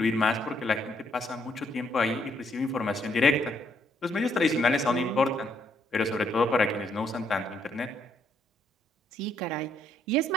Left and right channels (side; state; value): both; normal; correlation 0.72